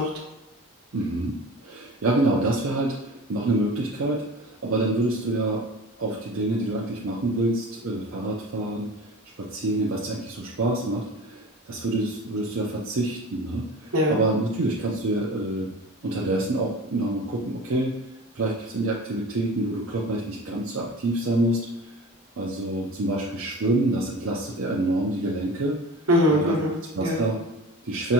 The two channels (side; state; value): both; normal; correlation 0.37